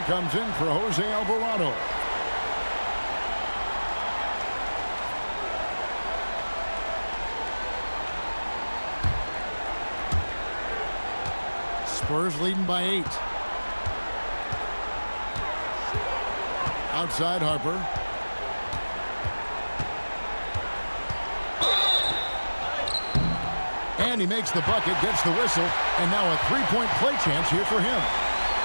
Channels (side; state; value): both; inverted; correlation -1.00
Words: comes in for Jose Alvarado. Spurs leading by 8. Outside Harper. And he makes the bucket, gets the whistle, and now a three-point play chance here for him.